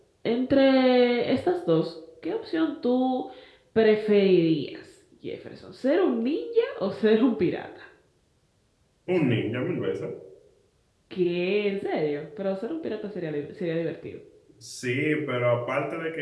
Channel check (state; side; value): identical; both; correlation 1.00